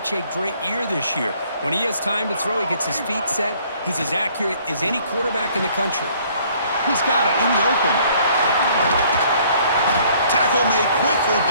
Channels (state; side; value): inverted; both; correlation -0.60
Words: a great year this year. When he has time to throw, he gets his feet set. He's as accurate as any quarterback in the country. He's got it in the open. Tackle made quickly,